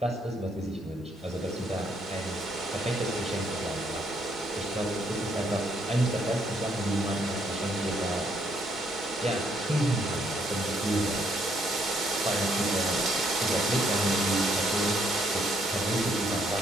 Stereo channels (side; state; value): both; normal; correlation 0.70